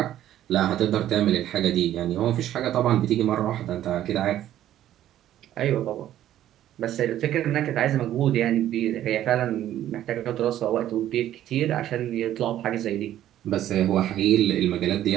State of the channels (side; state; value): left; quieter; 12.3 dB